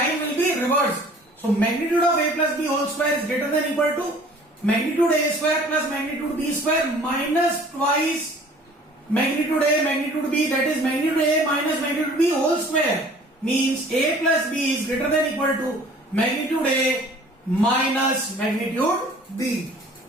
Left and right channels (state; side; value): normal; both; correlation 0.50